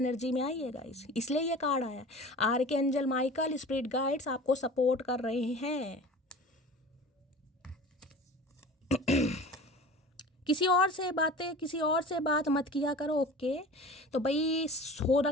में आइए गाइस। इसलिए ये कार्ड आया, आर्कएंजल माइकल, स्पिरिट गाइड्स आपको सपोर्ट कर रहे हैं। किसी और से बात मत किया करो, ओके। तो भाई हो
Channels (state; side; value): normal; both; correlation 0.39